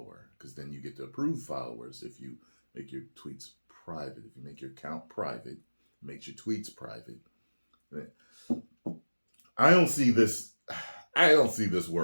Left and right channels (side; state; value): both; inverted; correlation -1.00